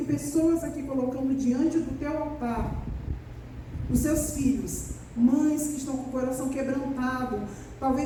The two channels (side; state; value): both; identical; correlation 1.00